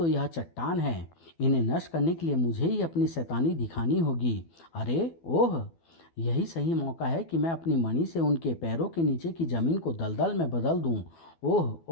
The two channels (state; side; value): late; right; 12 ms